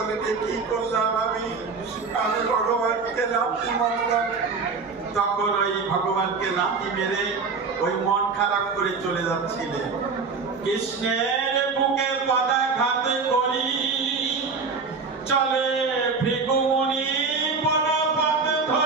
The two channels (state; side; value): quieter; left; 4.7 dB